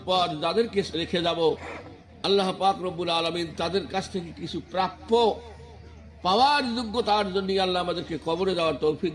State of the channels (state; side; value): identical; both; correlation 1.00